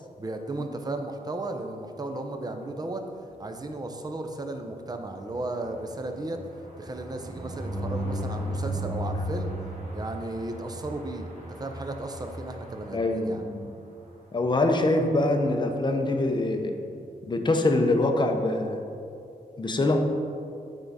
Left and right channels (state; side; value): normal; both; correlation 0.72